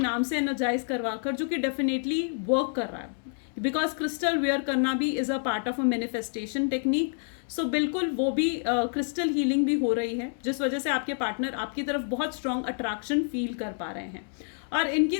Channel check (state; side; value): silent; right; 55 dB below the other